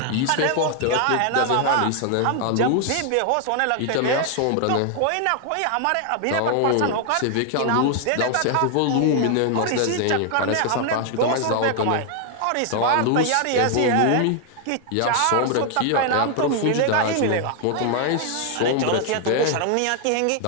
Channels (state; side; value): different; both; correlation 0.00